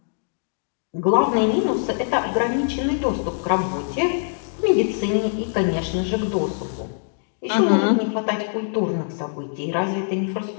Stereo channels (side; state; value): right; silent; digital silence